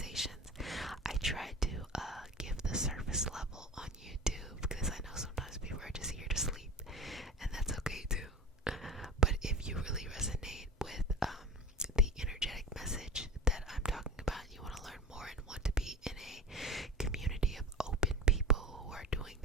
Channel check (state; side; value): normal; both; correlation 0.34